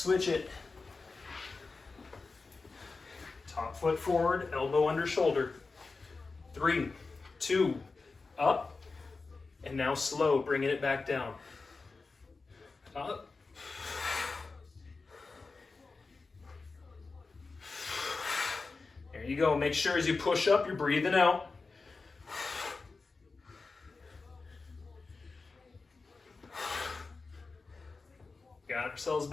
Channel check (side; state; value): right; quieter; 4.0 dB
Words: it. Top foot forward, elbow under shoulder. 3, 2, up. And now slow, bringing it back down. Up. There you go. Make sure as you push up, you're breathing out. Got ourselves